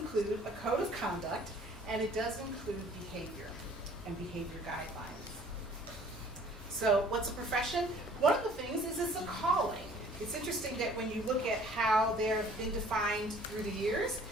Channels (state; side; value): normal; both; correlation 0.54